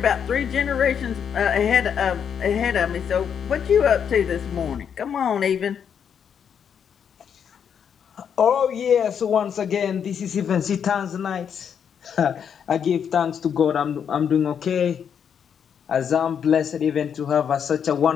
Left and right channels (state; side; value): quieter; right; 7.8 dB